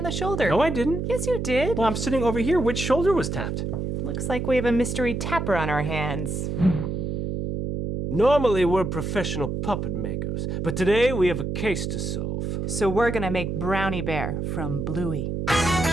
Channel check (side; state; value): right; noise; hum, 2 dB below the sound